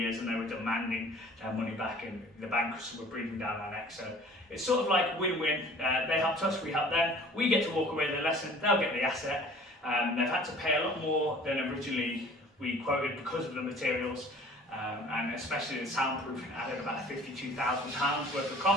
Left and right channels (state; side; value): normal; both; correlation 0.49